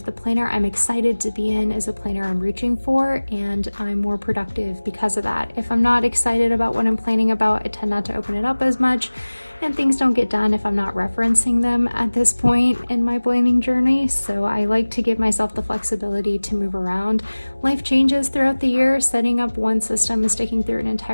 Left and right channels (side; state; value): both; inverted; correlation -1.00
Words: planner I'm excited to be in is a planner I'm reaching for, and I'm more productive because of that. If I'm not excited about what I'm planning about, I tend not to open it up as much, and things don't get done if I'm not referencing them at this point in my planning journey. So I like to give myself the flexibility to move around. Life changes throughout the year. Setting up one system and sticking through an